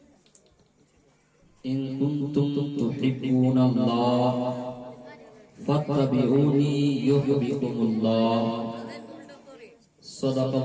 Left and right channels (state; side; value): identical; both; correlation 1.00